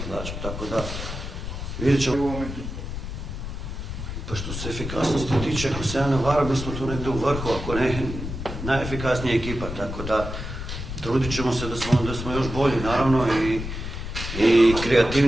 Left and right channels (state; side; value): noise; left; rumble, 7 dB below the sound